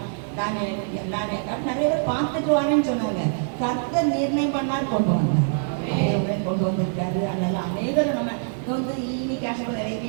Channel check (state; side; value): silent; left; 62 dB below the other